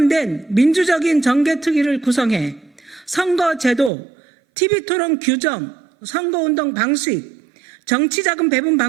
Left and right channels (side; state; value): left; drops out; at 3.9 s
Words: 민주적인 정개특위를 구성해 선거제도, TV토론 규정, 선거운동 방식, 정치자금 배분